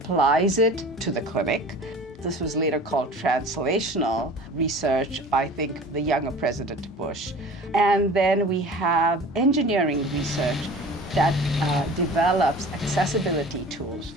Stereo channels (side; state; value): both; normal; correlation 0.41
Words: it to the clinic. This was later called translational research, I think, the younger President Bush. And then we have engineering research that develops accessibility tools